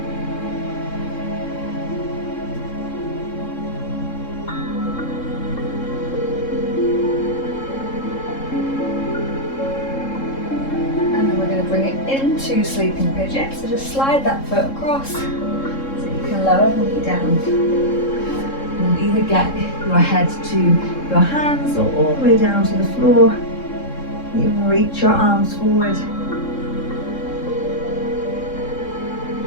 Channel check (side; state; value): right; late; 3.7 ms